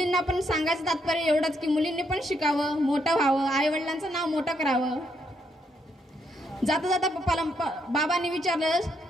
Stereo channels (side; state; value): both; normal; correlation 0.75